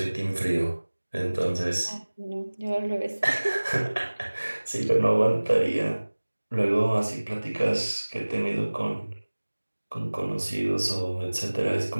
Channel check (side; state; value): both; inverted; correlation -1.00